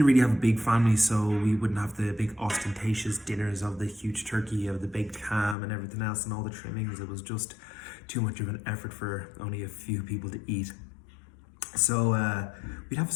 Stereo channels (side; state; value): right; drops out; at 5.6 s